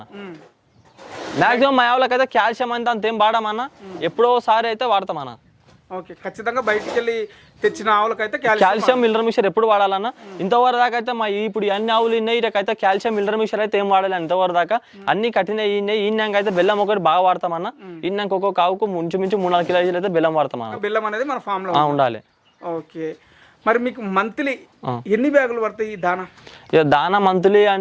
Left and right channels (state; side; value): identical; both; correlation 1.00